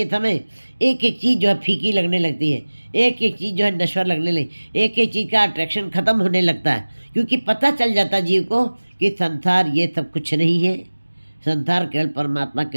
समय एक एक चीज़ जो है फीकी लगने लगती है, एक एक चीज़ जो है नश्वर लगने लगी, एक एक चीज़ का अट्रैक्शन ख़त्म होने लगता है। क्योंकि पता चल जाता जीव को कि संसार ये सब कुछ नहीं है, संसार केवल परमात्मा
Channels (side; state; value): both; inverted; correlation -1.00